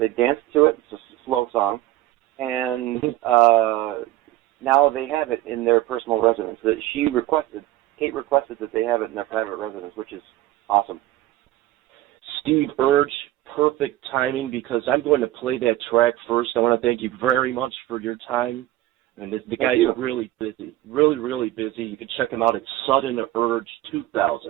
danced to it. It's a slow song. And now they have it in their personal residence. Kate requested that they have it in their private residence, which is awesome. SteveUrge perfect timing because I'm going to play that track first. I want to thank you very much for your time. And the guy's really busy, really busy. You can check him out at SteveUrge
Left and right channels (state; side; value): quieter; left; 15.5 dB